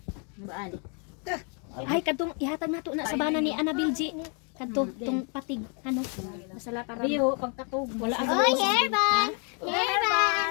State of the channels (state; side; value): quieter; right; 38.5 dB